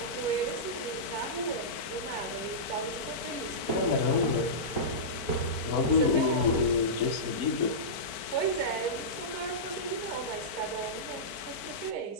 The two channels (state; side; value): late; right; 4.5 ms